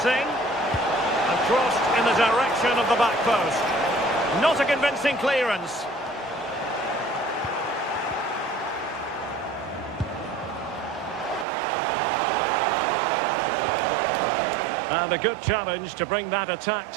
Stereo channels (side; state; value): left; drops out; at 11.5 s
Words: And crossed in the direction of the back post. Not a convincing clearance. And a good challenge to bring that attack